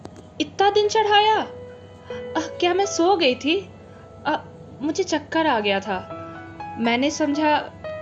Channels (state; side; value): identical; both; correlation 1.00